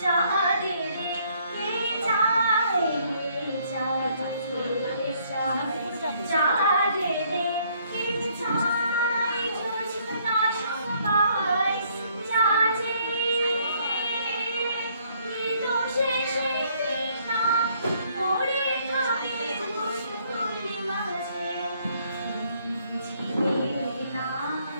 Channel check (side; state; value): both; inverted; correlation -0.66